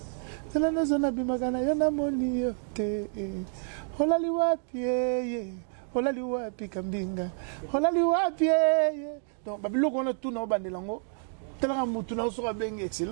Tela na zona bimakana yana moni yote holali wapi holali wapi Kambinga holali wapi donc babiloko on a tout na bandela ngo tela mutu na so bengi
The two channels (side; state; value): left; silent; 59 dB below the other